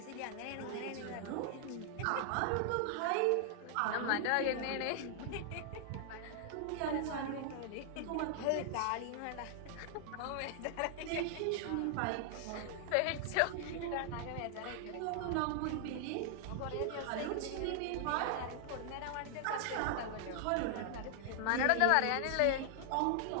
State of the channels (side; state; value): both; different; correlation 0.00